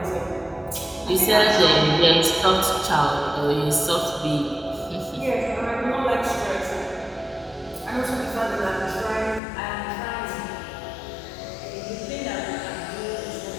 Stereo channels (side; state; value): right; drops out; at 9.4 s